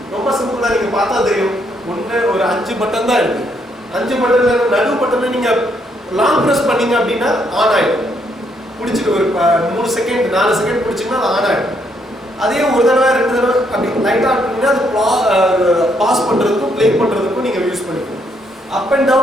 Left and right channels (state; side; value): normal; both; correlation 0.73